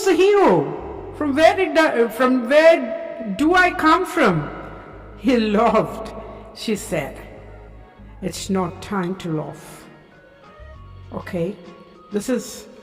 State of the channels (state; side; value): identical; both; correlation 1.00